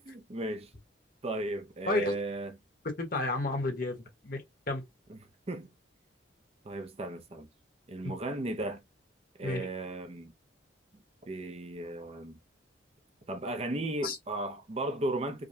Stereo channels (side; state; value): both; normal; correlation 0.44